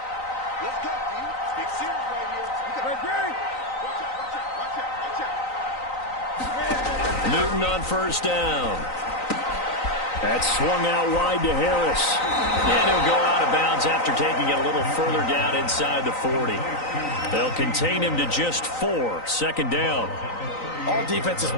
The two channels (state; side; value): late; right; 3.9 ms